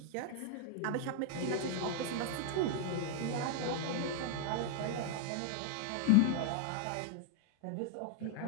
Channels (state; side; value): different; both; correlation 0.00